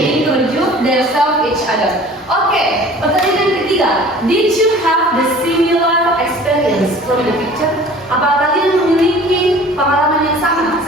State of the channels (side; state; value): both; normal; correlation 0.46